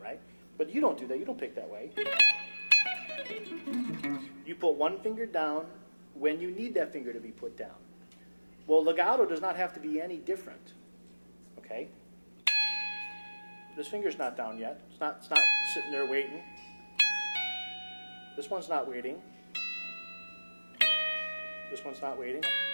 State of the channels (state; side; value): inverted; both; correlation -1.00